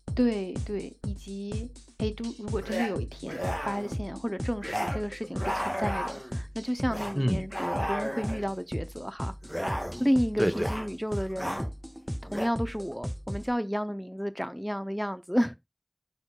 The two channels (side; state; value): both; identical; correlation 1.00